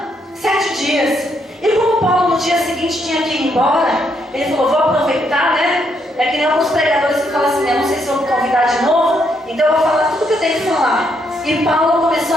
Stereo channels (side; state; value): both; normal; correlation 0.75